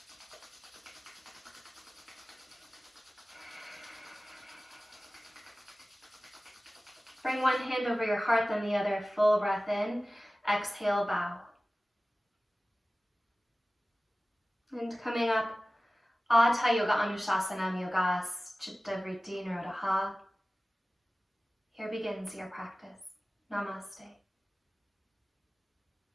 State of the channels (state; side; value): normal; both; correlation 0.97